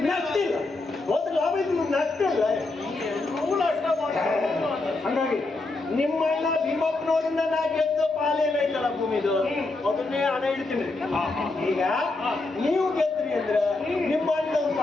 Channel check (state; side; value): quieter; right; 3.2 dB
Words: ನಗ್ತಿಲ್ಲ. ಹೋದ್ರೆ ಲಾಭ ಇದ್ರು ನಗ್ತಿಲ್ಲ. ಹಂಗಾಗಿ ನಿಮ್ಮ ಅಣ್ಣ ಭೀಮಪ್ಪನವರಿಂದ ನಾ ಗೆದ್ದ ಪಾಲೇನೈತಲ್ಲ ಭೂಮಿದು ಅದನ್ನೇ ಹಣ ಇಡ್ತೀನಿ. ಈಗ ನೀವು ಗೆದ್ರಿ ಅಂದ್ರೆ ನಿಮ್ಮ ಅಣ್ಣ